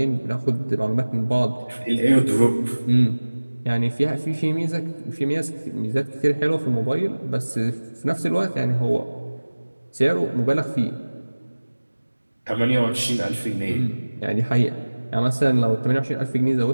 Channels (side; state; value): both; inverted; correlation -1.00